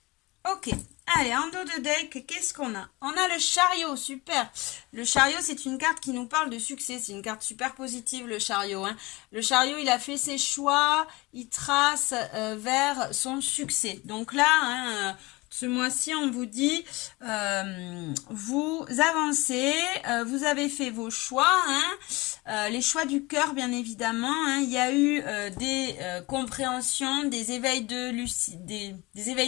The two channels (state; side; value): quieter; right; 22.9 dB